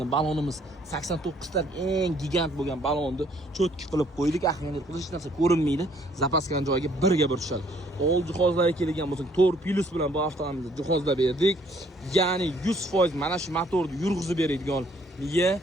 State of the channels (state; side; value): normal; both; correlation 0.63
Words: balonimiz 89 ta eng gigant bo'lgan balonni cho'tki qilib qo'ydik. Ahmiyat qilish hech narsa ko'rinmaydi. Zapaskani joyiga birga bir tushadi. Old jihozlarga kelgan bo'lsak, 4 plus bilan bu avtomobilni jihozlab berdik. Ya'ni 100% mana shu motorni yurg'izib beradigan miya